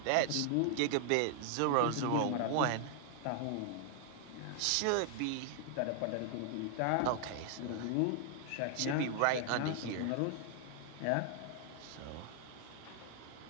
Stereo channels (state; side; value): different; both; correlation 0.00